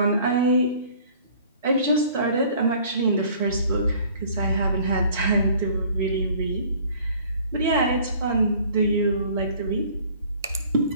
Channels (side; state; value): both; inverted; correlation -0.53